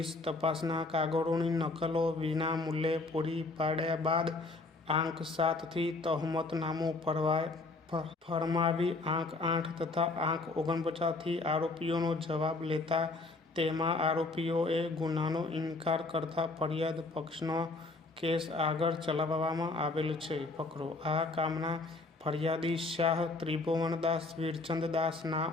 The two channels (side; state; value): right; quieter; 3.4 dB